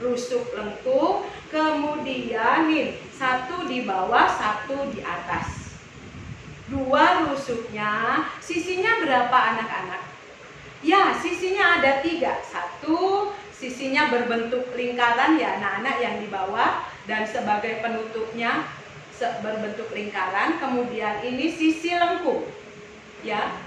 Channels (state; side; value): identical; both; correlation 1.00